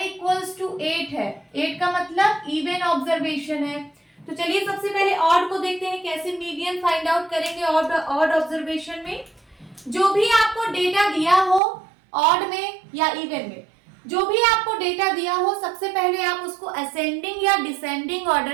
इक्वल्स टू 8 है। 8 का मतलब इवन ऑब्जर्वेशन है। तो चलिए सबसे पहले ऑड को देखते हैं, कैसे मीडियन फाइंड आउट करेंगे ऑड ऑब्जर्वेशन में। जो भी आपको डेटा दिया हो ऑड में या इवन में, जो भी आपको डेटा दिया हो, सबसे पहले आप उसको असेंडिंग या डिसेंडिंग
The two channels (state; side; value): drops out; left; at 11.6 s